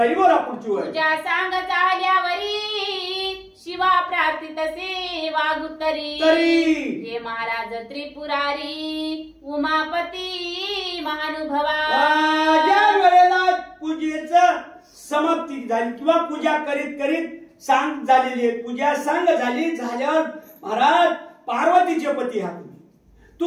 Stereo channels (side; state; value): both; identical; correlation 1.00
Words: बोला पुढची वेळ. पूजा सांग चाल्यावरी शिवा प्रार्थित सेवा गुत्तरी. हे महाराज त्रिपुरारी उमापती महानुभवा. ज्या वेळेला पूजेचं समाप्ती झाली किंवा पूजा करीत करीत सांग झालेली आहे, पूजा सांग झाल्यावर महाराज पार्वतीचे पती हा